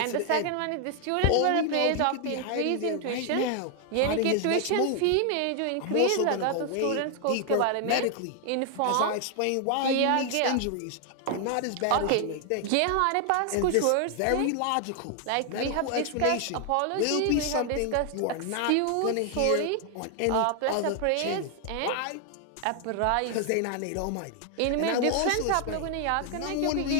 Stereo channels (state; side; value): different; both; correlation 0.00